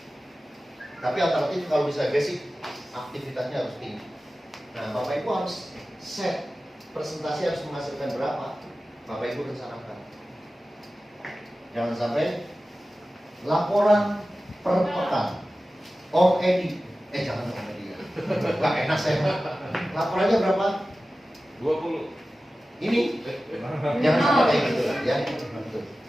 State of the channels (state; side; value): normal; both; correlation 0.95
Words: Tapi alternatif kalau bisa basic, aktivitasnya harus tinggi. Nah, Bapak Ibu harus set presentasi harus menghasilkan berapa. Bapak Ibu rencanakan. Jangan sampai laporan per pekan. Om Edi, jangan Om Edi ya. Gak enak saya. Laporannya berapa? 20. Ini jangan sampai kayak gitu ya.